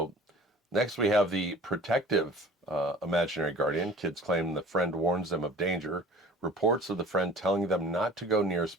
next we have the protective imaginary guardian. Kids claim the friend warns them of danger. Reports of the friend telling them not to go near a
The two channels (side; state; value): both; normal; correlation 0.45